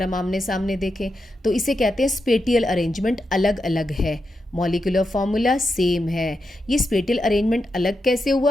हम आमने सामने देखें तो। इसे कहते हैं स्पेटियल अरेंजमेंट अलग अलग है, मॉलिक्यूलर फॉर्मूला सेम है। ये स्पेटियल अरेंजमेंट अलग कैसे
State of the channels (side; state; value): both; normal; correlation 0.86